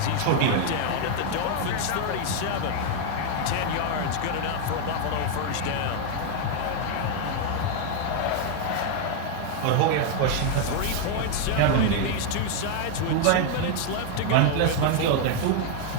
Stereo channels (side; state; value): both; different; correlation 0.00